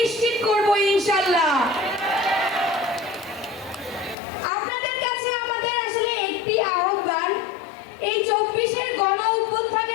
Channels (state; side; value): drops out; right; at 4.2 s